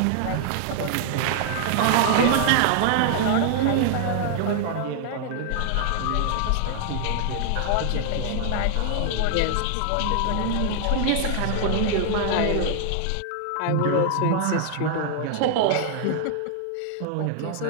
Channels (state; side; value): different; both; correlation 0.00